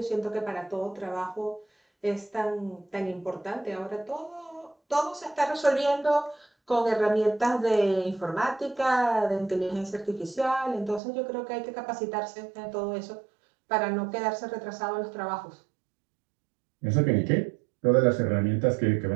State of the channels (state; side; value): drops out; left; at 11.0 s